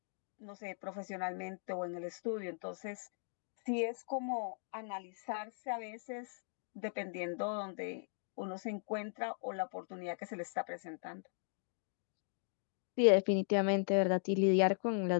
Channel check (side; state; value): right; silent; digital silence